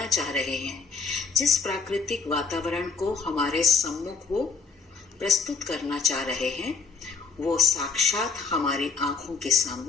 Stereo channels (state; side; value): quieter; right; 5.0 dB